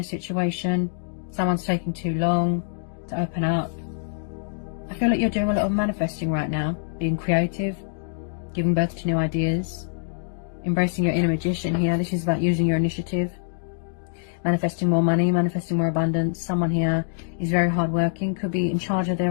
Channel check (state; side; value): silent; right; digital silence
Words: situation. Someone's taking too long to open up. I feel like you're doing a lot of manifesting right now. Being creative. Giving birth to new ideas. Embracing your inner magician here. This is about using your initiative. Manifesting more money. Manifesting more abundance. Someone here is very hardworking. Could be in charge of